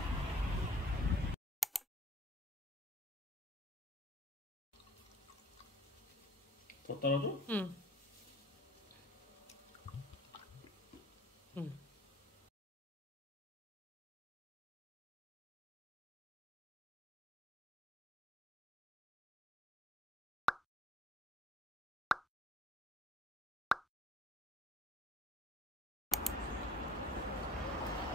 더 따라줘? 응. 응.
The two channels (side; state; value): both; normal; correlation 0.58